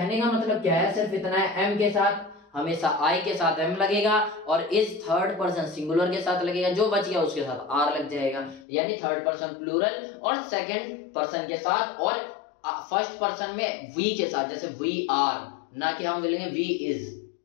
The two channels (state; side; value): drops out; right; at 8.7 s